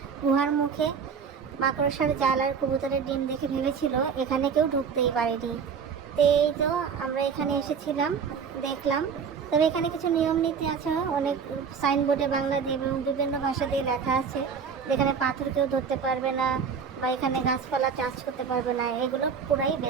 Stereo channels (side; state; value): left; quieter; 6.4 dB